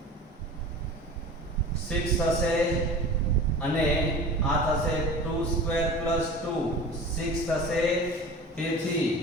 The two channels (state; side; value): normal; both; correlation 0.37